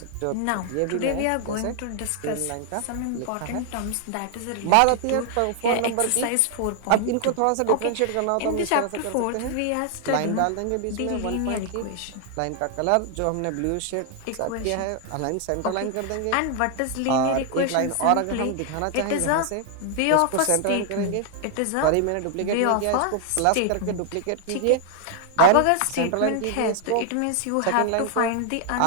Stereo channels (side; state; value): both; different; correlation 0.00